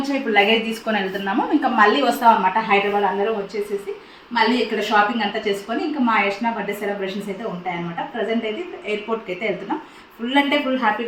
ఇప్పుడు లగేజ్ తీసుకొని వెళ్తున్నాము. ఇంకా మళ్ళీ వస్తాం అనమాట. హైదరాబాద్ అందరం వచ్చేసేసి మళ్ళీ ఇక్కడ షాపింగ్ అంతా చేసుకొని ఇంకా మా యష్నా బర్త్డే సెలబ్రేషన్స్ అయితే ఉంటాయన్నమాట. ప్రజెంట్ అయితే ఎయిర్పోర్ట్కి అయితే వెళ్తున్నాం. ఫుల్ అంటే ఫుల్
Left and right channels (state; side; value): identical; both; correlation 1.00